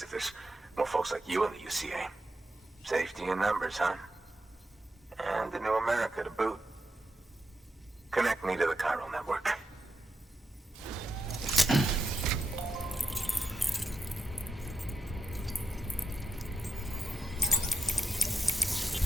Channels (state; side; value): normal; both; correlation 0.86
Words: if there's more folks like you in the UCA. Safety in numbers, huh? And the new America to boot. Connect me to the chiral network.